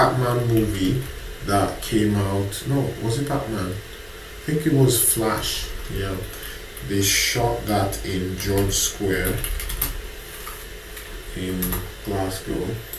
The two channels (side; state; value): both; identical; correlation 1.00